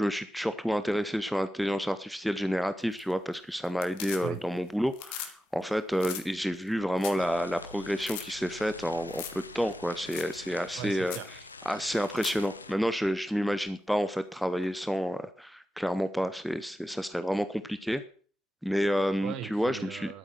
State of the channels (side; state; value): both; normal; correlation 0.92